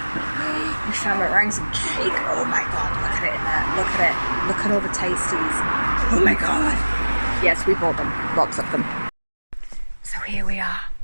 We found meringues and cake. Oh my god, look at it in there. Look at it. Look at all the tasties. Oh my god. Yes, we bought them. Lots of them. So here we are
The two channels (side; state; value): both; inverted; correlation -1.00